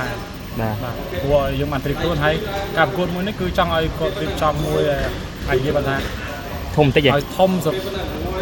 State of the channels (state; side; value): identical; both; correlation 1.00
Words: ែ បាទ បាទព្រោះយើងបានត្រៀមខ្លួនហើយការប្រកួតមួយនេះគឺចង់ឲ្យគាត់រៀបចំមួយហើយនិយាយបានថា ធំតិច ឲ្យធំ